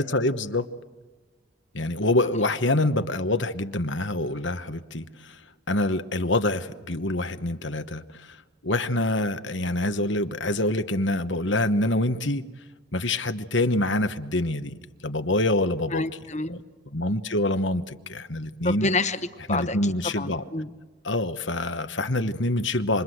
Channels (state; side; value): normal; both; correlation 0.27